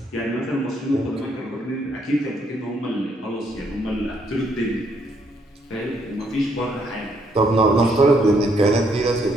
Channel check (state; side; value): normal; both; correlation 0.71